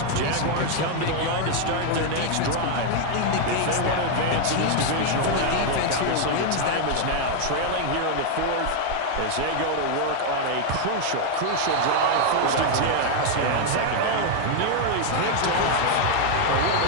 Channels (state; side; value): different; both; correlation 0.01